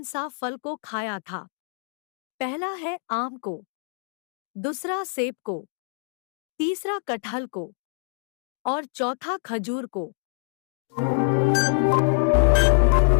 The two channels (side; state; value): right; silent; digital silence